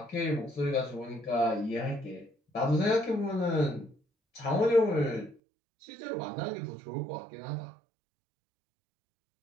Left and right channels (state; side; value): drops out; left; at 5.4 s